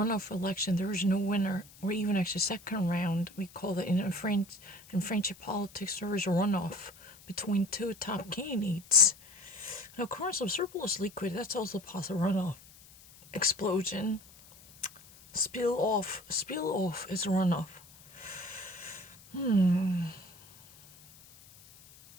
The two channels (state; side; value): noise; left; hiss, 23 dB below the sound